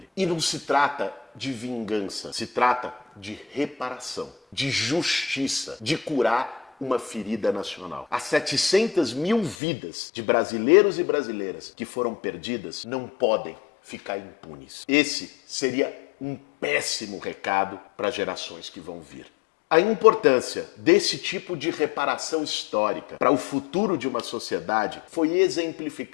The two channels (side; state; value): right; drops out; at 9.6 s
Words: E não se trata de vingança, se trata de reparação, de justiça, de curar uma ferida nacional. As 700 mil vidas de brasileiros e brasileiras que foram perdidas não podem ficar impunes. Esse seria um péssimo recado para gerações que vão vir. A importância desse tipo de reparação histórica para o futuro de uma sociedade foi